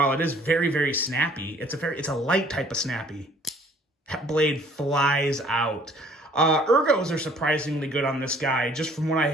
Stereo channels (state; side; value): normal; both; correlation 0.57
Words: it is very, very snappy, it's a light type of snappy. That blade flies out. Ergos are surprisingly good on this guy. Just from what I